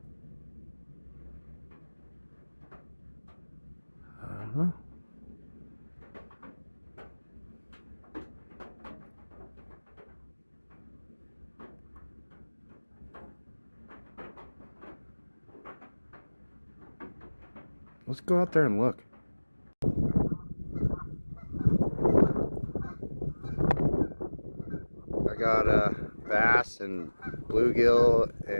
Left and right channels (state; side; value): inverted; both; correlation -1.00